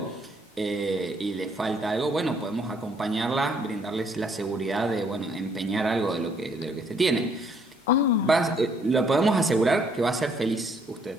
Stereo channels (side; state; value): both; normal; correlation 0.66